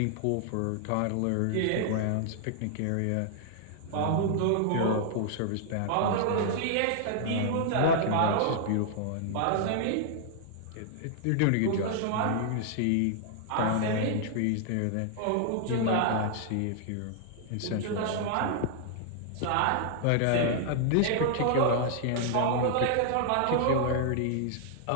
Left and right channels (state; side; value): different; both; correlation -0.01